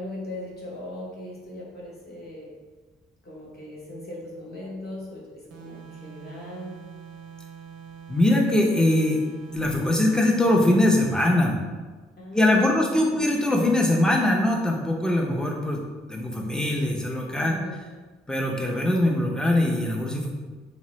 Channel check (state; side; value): normal; both; correlation 0.78